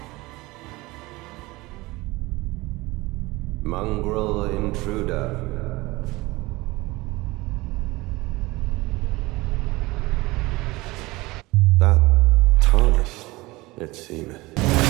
Mongrel intruder. That tarnished, it seemeth.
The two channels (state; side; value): quieter; left; 21.3 dB